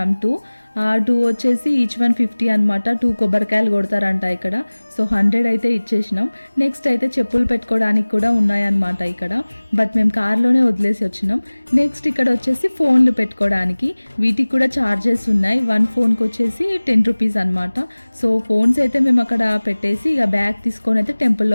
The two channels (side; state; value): both; inverted; correlation -1.00